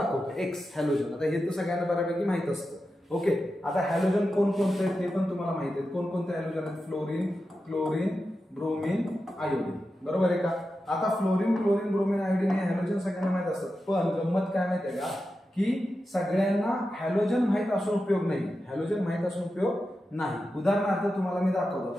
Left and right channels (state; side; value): normal; both; correlation 0.91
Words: एक्स हॅलोजन. आता हे तर सगळ्यांना बऱ्यापैकी माहित असतं ओके. आता हॅलोजन कोणकोणते आहेत ते पण तुम्हाला माहिती आहेत. कोणकोणते हॅलोजन आहेत फ्लोरीन क्लोरीन ब्रोमीन आयोडीन बरोबर आहे का. आता फ्लोरीन क्लोरीन ब्रोमीन आयोडीन हे हॅलोजन सगळ्यांना माहित असतात. पण गंमत काय माहिती आहे का की सगळ्यांना हॅलोजन माहित असून उपयोग नाही. हॅलोजन माहित असून उपयोग नाही. उदाहरणार्थ तुम्हाला मी